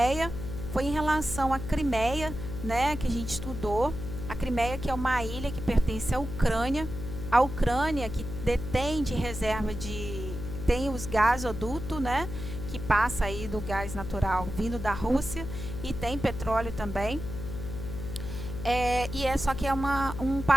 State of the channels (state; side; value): noise; left; hum, 7 dB below the sound